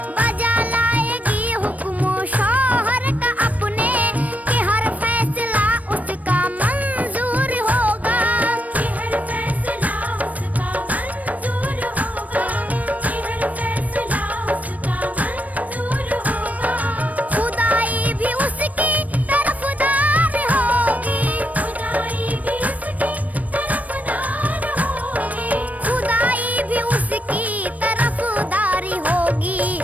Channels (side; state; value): left; late; 0.072 ms